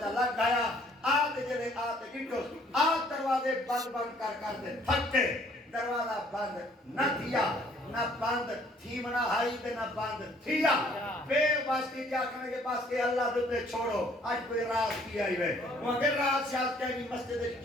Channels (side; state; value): both; normal; correlation 0.60